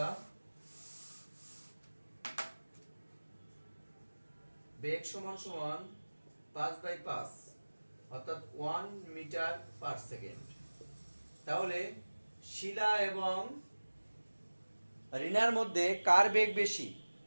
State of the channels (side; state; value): both; inverted; correlation -1.00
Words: বেগ সমান সমান 5/5 অর্থাৎ 1 মিটার পার সেকেন্ড। তাহলে শিলা এবং রিনার মধ্যে কার বেগ বেশি,